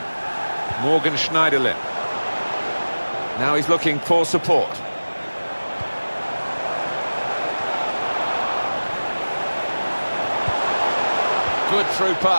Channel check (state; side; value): inverted; both; correlation -1.00